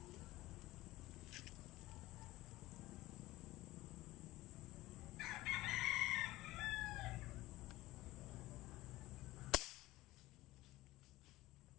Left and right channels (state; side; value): quieter; right; 18.2 dB